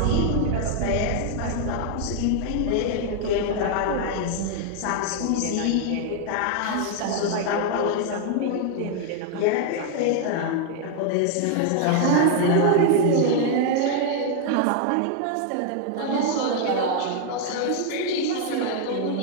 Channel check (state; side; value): different; both; correlation 0.00